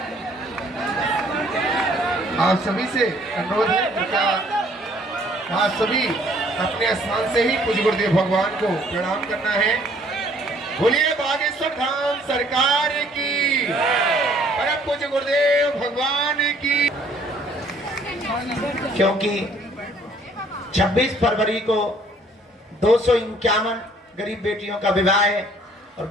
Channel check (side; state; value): both; normal; correlation 0.60